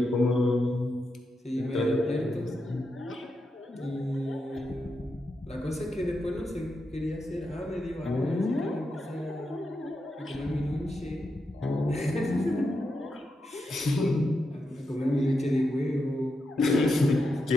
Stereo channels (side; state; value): both; normal; correlation 0.86